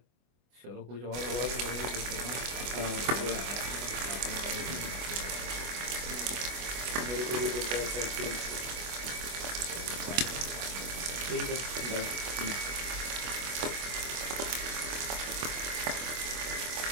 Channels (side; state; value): left; late; 24 ms